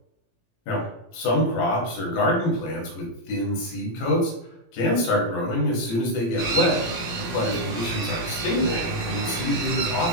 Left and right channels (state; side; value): late; right; 18 ms